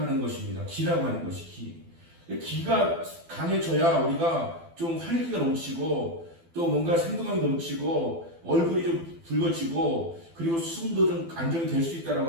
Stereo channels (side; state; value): left; late; 12 ms